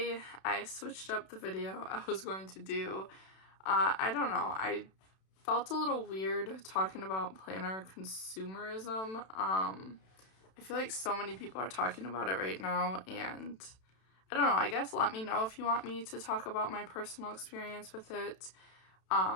I switched up the video I was going to do. I don't know, I felt a little weird talking about planner consumerism. I feel like so many people are talking about it right now, and I don't know, I guess let me know if you want me to talk about my personal experience with it.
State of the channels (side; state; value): right; late; 32 ms